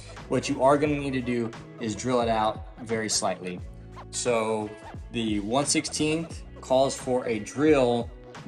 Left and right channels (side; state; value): both; identical; correlation 1.00